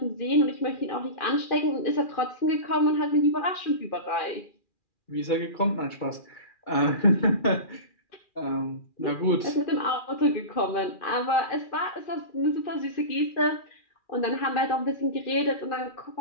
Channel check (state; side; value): late; right; 2.4 ms